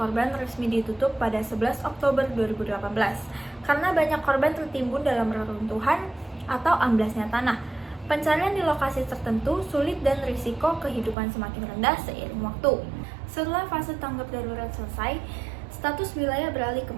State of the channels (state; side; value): drops out; left; at 11.2 s